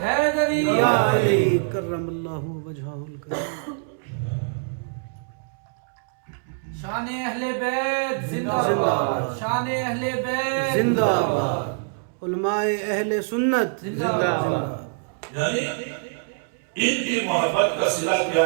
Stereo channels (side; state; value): left; silent; 62 dB below the other